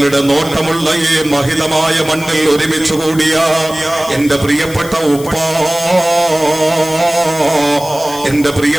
നോട്ടമുള്ള ഈ മഹിതമായ മണ്ണിൽ ഒരുമിച്ച് കൂടിയ എന്റെ പ്രിയപ്പെട്ട ഉപ്പ, എന്റെ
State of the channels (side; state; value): left; noise; hiss, 15 dB below the sound